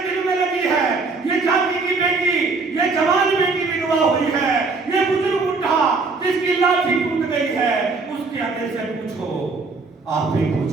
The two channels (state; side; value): quieter; left; 4.1 dB